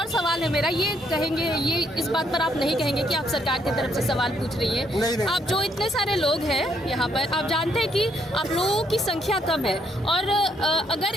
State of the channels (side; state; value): both; normal; correlation 0.72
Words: सवाल है मेरा, ये कहेंगे, ये इस बात पर आप नहीं कहेंगे कि आप सरकार की तरफ से सवाल पूछ रही है? नहीं। आप जो इतने सारे लोग हैं यहाँ पर, आप जानते हैं कि आप लोगों की संख्या कम है, और अगर